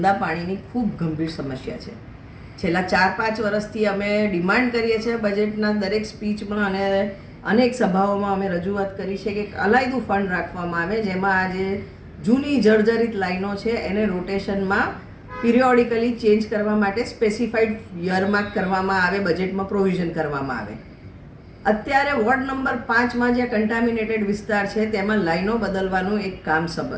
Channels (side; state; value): both; identical; correlation 1.00